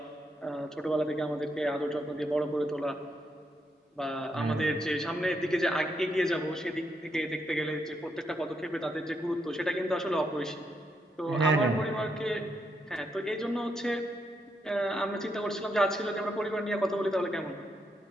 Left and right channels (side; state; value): both; normal; correlation 0.79